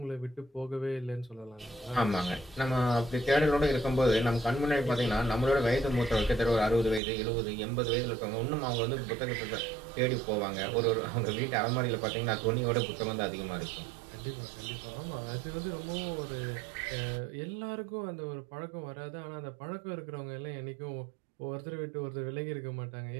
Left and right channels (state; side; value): drops out; left; at 7.0 s